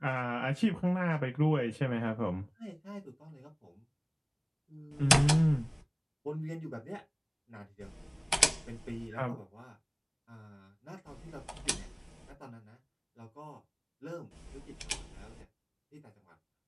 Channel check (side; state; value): both; identical; correlation 1.00